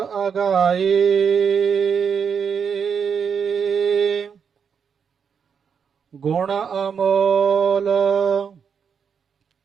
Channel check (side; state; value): left; quieter; 6.7 dB